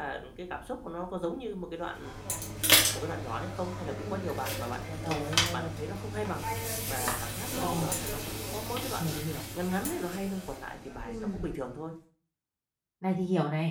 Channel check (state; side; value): identical; both; correlation 1.00